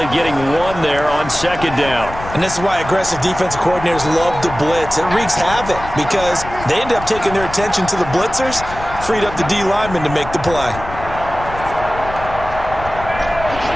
getting 1 there on second down. And this is why aggressive defensive coordinators love to blitz. It wreaks havoc because they end up taking their attention to the blitzers, freed up the D lineman to make the play.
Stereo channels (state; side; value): noise; left; rumble, 12 dB below the sound